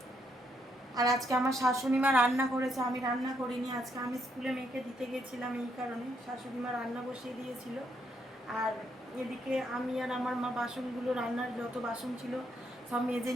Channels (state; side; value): normal; both; correlation 0.75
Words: আর আজকে আমার শাশুড়ি মা রান্না করেছে, আমি রান্না করিনি। আজকে আমি স্কুলে মেয়েকে দিতে গেছিলাম, এই কারণে শাশুড়ি মা রান্না বসিয়ে দিয়েছিল। আর এদিকে আমি আর আমার মা বাসনগুলো, রান্নার যত বাসন ছিল সব মেজে